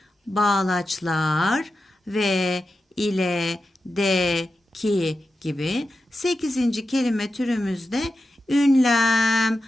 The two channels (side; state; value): both; normal; correlation 0.91